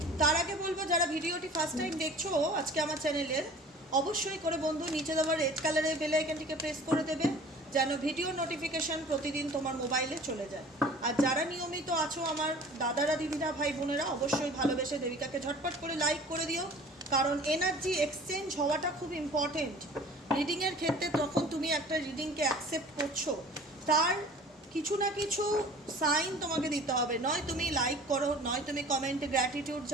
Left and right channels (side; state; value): both; normal; correlation 0.45